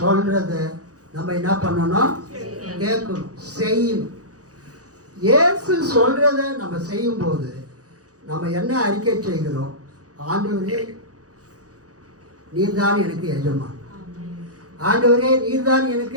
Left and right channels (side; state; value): left; late; 0.67 ms